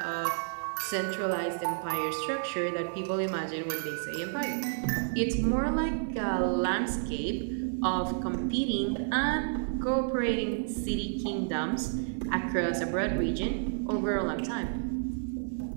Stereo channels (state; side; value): silent; left; digital silence